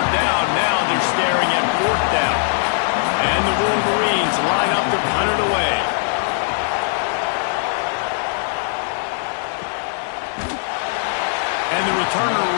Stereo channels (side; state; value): right; silent; 66 dB below the other